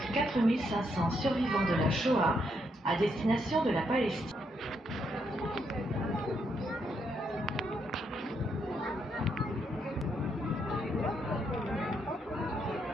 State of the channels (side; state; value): both; normal; correlation 0.77